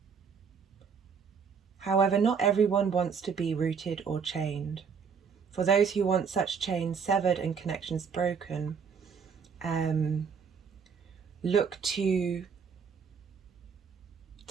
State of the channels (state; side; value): quieter; left; 6.2 dB